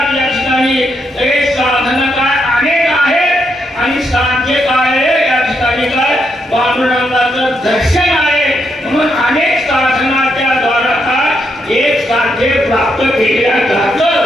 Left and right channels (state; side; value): normal; both; correlation 0.79